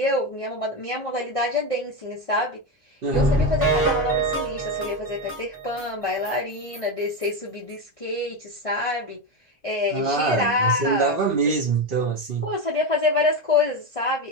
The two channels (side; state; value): both; normal; correlation 0.14